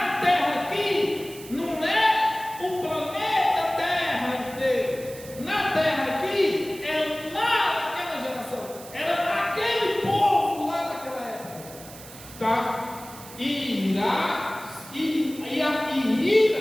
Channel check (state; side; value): noise; right; hiss, 17 dB below the sound